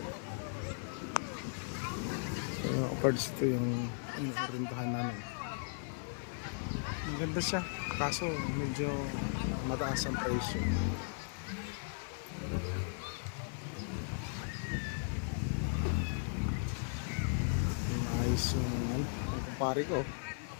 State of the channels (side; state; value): right; silent; 53 dB below the other